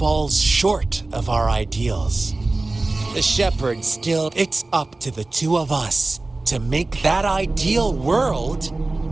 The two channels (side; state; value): left; quieter; 3.1 dB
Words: short of our ideals. The shepherd still, it's up to the two of us to make that ideal world